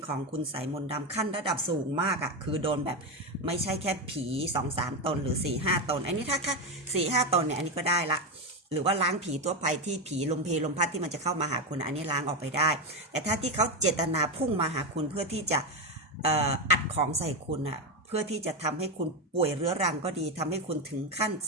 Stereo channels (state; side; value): normal; both; correlation 0.12